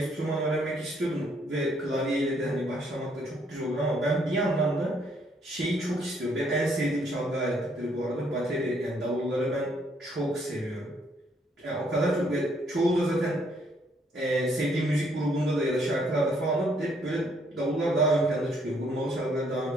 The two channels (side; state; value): both; normal; correlation 0.68